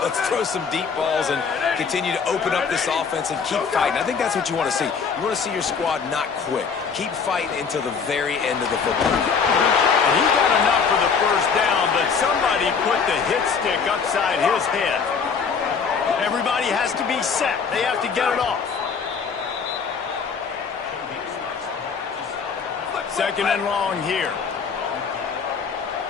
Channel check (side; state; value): right; quieter; 5.8 dB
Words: Let's throw some deep balls and continue to open up this offense and keep fighting. I think that's what you want to see. You want to see your squad not quit. Keep fighting until the very end of the football game. And he got enough for the first down, but somebody put the hit stick upside his head. Everybody has to be set. They have to get it off. Second and long here.